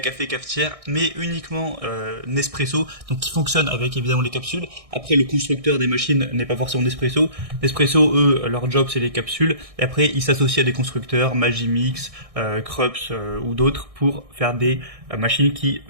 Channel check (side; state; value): left; late; 1.6 ms